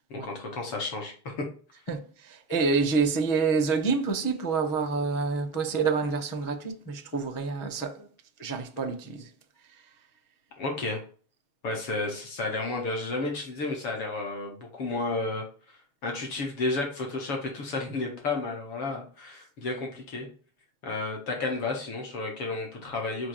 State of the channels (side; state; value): right; late; 7.1 ms